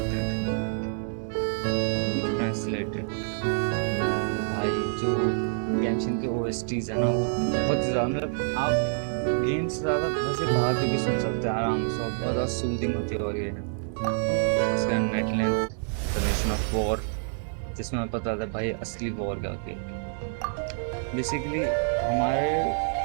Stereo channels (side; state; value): left; silent; digital silence